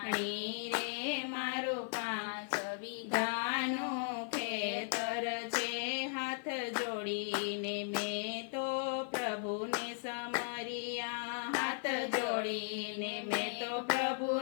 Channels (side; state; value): right; silent; 53 dB below the other